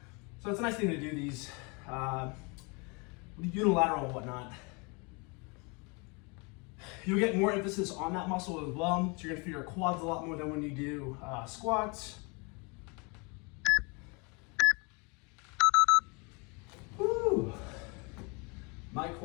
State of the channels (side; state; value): right; quieter; 30.9 dB